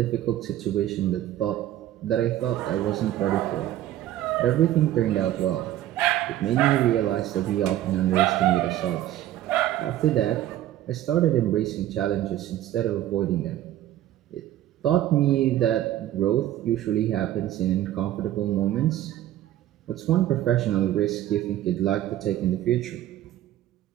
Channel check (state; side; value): quieter; left; 13.1 dB